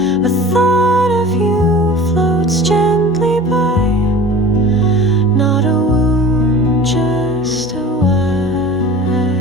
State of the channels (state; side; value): normal; both; correlation 0.40